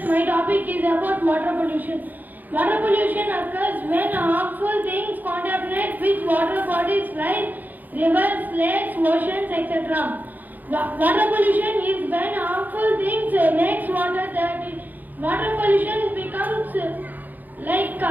my topic is about water pollution. Water pollution occurs when harmful things contaminate with water bodies like rivers, lakes, oceans, etc. Water pollution is when harmful things makes water dirty. Water pollution becomes like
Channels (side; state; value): left; late; 0.084 ms